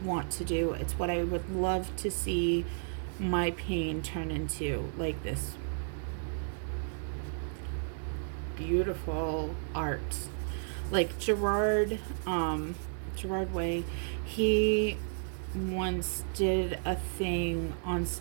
want to do. It's what I would love to see my pain turn into, like this beautiful art. Like Gerard Way, he once did a thing on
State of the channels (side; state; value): left; silent; digital silence